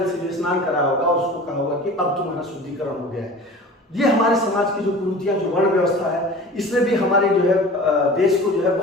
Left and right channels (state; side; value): normal; both; correlation 0.40